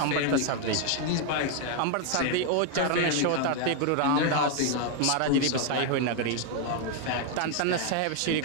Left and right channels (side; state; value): both; different; correlation 0.01